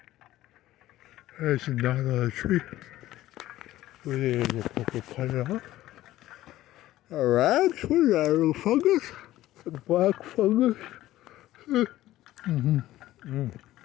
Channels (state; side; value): quieter; right; 15.1 dB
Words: There's a knot on a tree. We're going to cut it off. Alright, what is that, a little fungus? A black fungus?